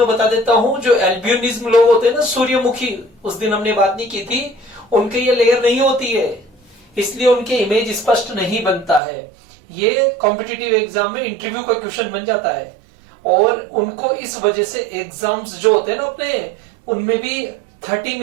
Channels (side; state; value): left; drops out; at 9.0 s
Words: बता देता हूँ। जो एल्बियनिज्म लोग होते हैं ना, सूर्यमुखी, उस दिन हमने बात नहीं की थी, उनके ये लेयर नहीं होती है, इसलिए उनके इमेज स्पष्ट नहीं बनता है। ये कॉम्पिटिटिव एग्जाम में इंटरव्यू का क्वेश्चन बन जाता है और उनको इस वजह से एग्जाम्स जो होते हैं ना अपने, उनमें भी 30